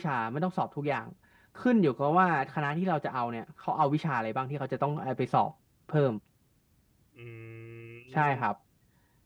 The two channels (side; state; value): both; identical; correlation 1.00